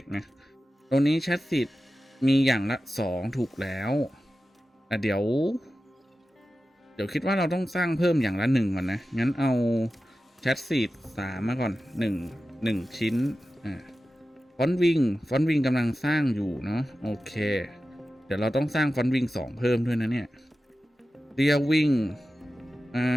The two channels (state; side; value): normal; both; correlation 0.93